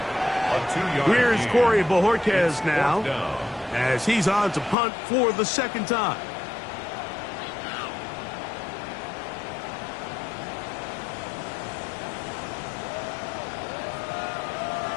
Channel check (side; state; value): right; drops out; at 4.8 s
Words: Here's Corey Bojorquez now, as he's on to punt for the 2nd time.